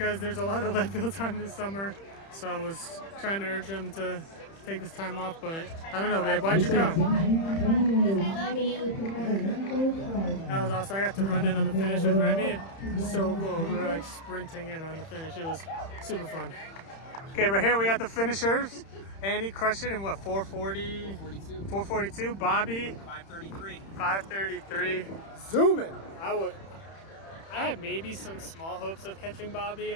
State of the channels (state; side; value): late; right; 31 ms